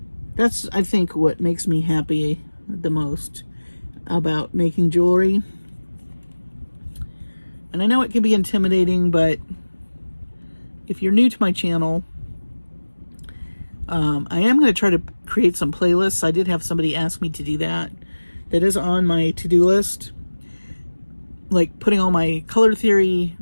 I think what makes me happy the most about making jewelry. And I know it can be intimidating, but if you're new to my channel, I am going to try to create some playlists. I did have somebody ask me to do that. That is on my to-do list. Like putting all my color theory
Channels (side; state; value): both; inverted; correlation -1.00